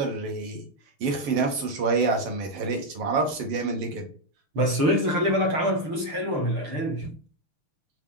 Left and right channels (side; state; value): left; late; 6.6 ms